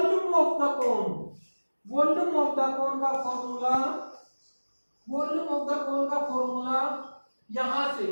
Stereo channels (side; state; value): both; inverted; correlation -1.00